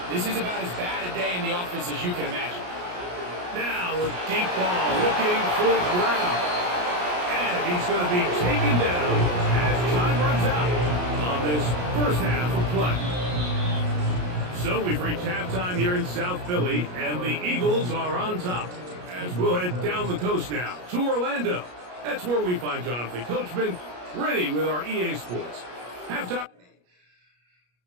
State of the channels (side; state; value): left; late; 33 ms